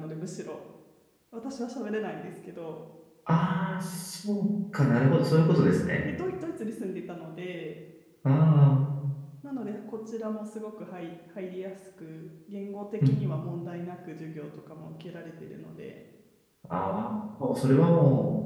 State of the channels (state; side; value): identical; both; correlation 1.00